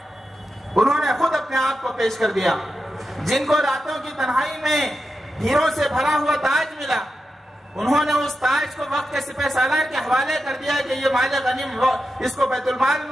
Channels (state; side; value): normal; both; correlation 0.89